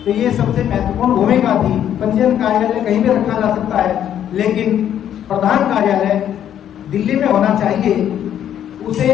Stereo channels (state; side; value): quieter; right; 10.2 dB